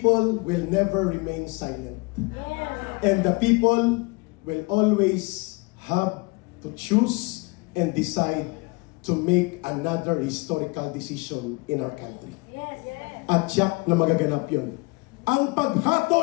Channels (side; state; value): right; quieter; 26.9 dB